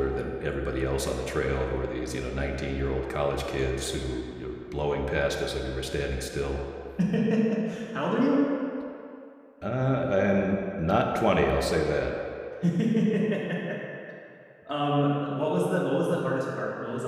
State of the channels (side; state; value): both; identical; correlation 1.00